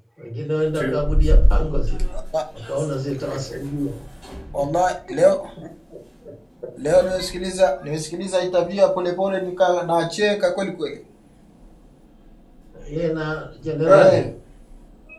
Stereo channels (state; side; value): identical; both; correlation 1.00